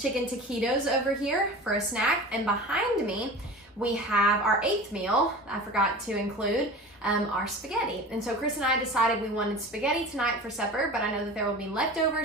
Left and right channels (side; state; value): both; normal; correlation 0.35